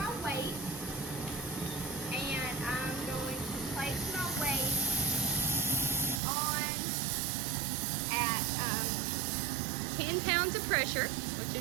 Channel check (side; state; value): left; drops out; at 6.2 s